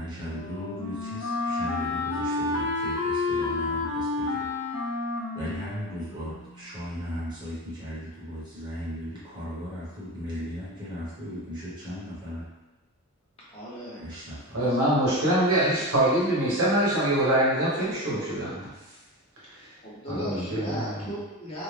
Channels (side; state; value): both; normal; correlation 0.24